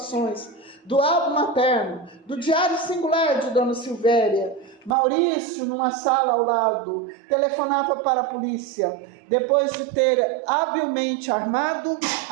do álbum materno, do diário singular de Dona Silvéria, Maurício, numa sala ao lado, telefonava para a polícia, depois de ter habilmente armado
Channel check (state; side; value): drops out; left; at 5.0 s